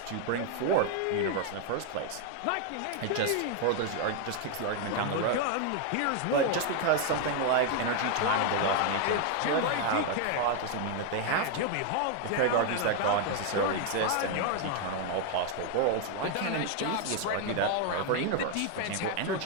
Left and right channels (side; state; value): both; different; correlation 0.00